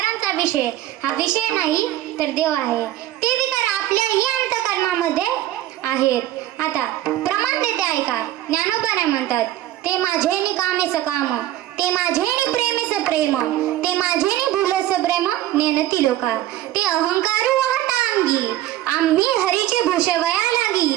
विषय हा विषय नाही तर देव आहे. ते विकार आपल्याही अंतकरणामध्ये आहेत. आता प्रमाण देते ऐका. ज्ञानोबा काय म्हणतात, ते माझेनी कामेच काम, ते माझेनी प्रेमेच प्रेम, ते माझेनी भुलस प्रेम नेनती लोका, ते अहंकारू वाहता अंगी, आम्ही हरीचे भूषवया लागी,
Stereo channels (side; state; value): left; quieter; 14.0 dB